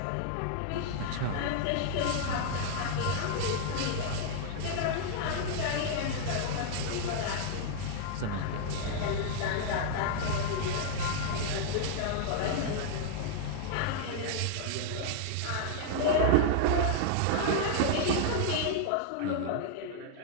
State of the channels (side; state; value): both; different; correlation 0.00